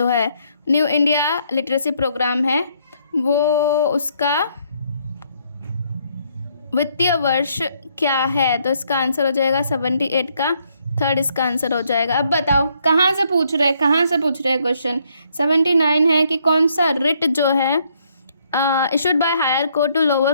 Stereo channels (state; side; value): inverted; both; correlation -0.70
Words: है न्यू इंडिया लिटरेसी प्रोग्राम है वो उसका वित्तीय वर्ष क्या है, तो इसका आंसर हो जाएगा 78 का थर्ड इसका आंसर हो जाएगा। अब बताओ कहाँ से पूछ रहे हैं क्वेश्चन। 79 है कि कौन सा रिट जो है issued by higher court to lower